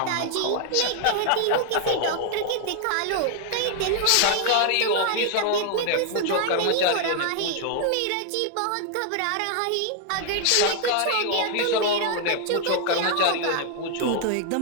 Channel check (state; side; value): different; both; correlation 0.00